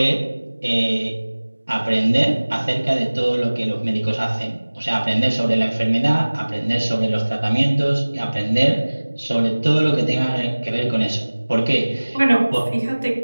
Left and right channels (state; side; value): inverted; both; correlation -1.00